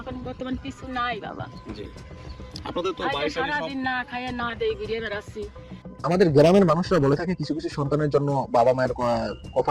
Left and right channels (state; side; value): identical; both; correlation 1.00